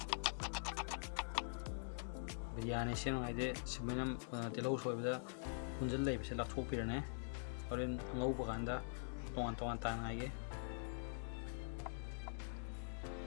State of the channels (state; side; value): silent; right; digital silence